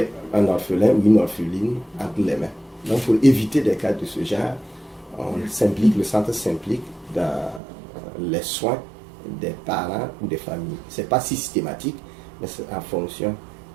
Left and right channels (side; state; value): left; drops out; at 7.6 s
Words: un orphelin ou une orpheline entre les mains. Donc pour éviter des cas de ce genre, le centre s'implique dans les soins des parents ou des familles. Ce n'est pas systématique, mais c'est en fonction